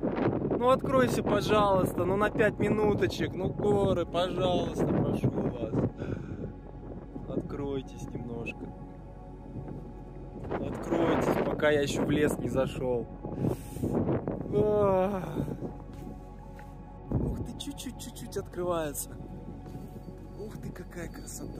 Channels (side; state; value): both; identical; correlation 1.00